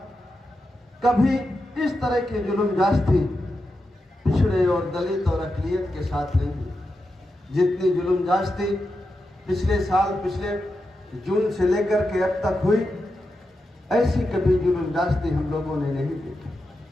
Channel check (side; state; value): both; normal; correlation 0.88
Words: कभी इस तरह के जुल्म जास्ती पिछड़े और दलित और अक़लियत के साथ नहीं हुई। जितनी जुल्म जास्ती पिछले साल, पिछले जून से लेकर के अब तक हुई, ऐसी कभी जुल्म जास्ती हम लोगों ने नहीं